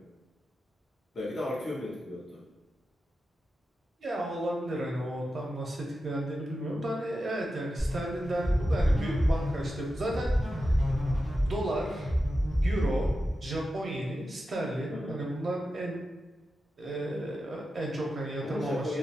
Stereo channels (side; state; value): both; normal; correlation 0.91